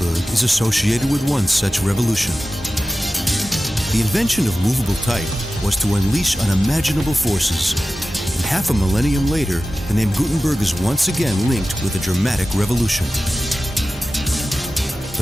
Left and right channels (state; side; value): normal; both; correlation 0.95